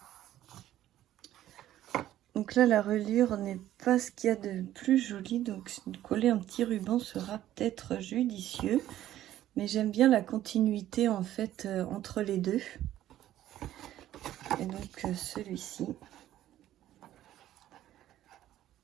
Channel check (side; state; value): left; quieter; 13.0 dB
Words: Donc là, la reliure n'est pas ce qu'il y a de plus joli, donc coller un petit ruban sera peut-être judicieux. Mais j'aime bien la continuité en fait entre les deux. Et donc celui-ci.